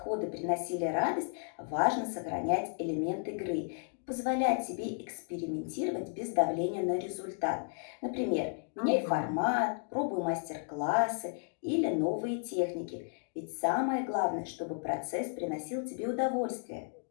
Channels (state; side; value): silent; right; 55 dB below the other